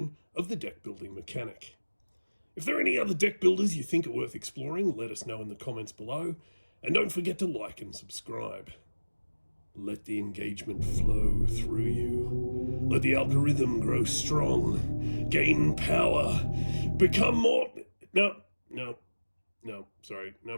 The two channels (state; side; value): inverted; both; correlation -1.00